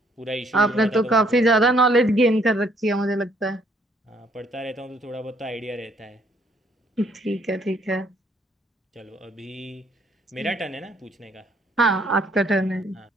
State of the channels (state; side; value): normal; both; correlation 0.66